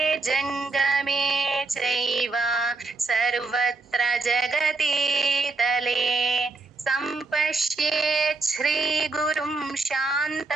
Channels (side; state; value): left; quieter; 3.6 dB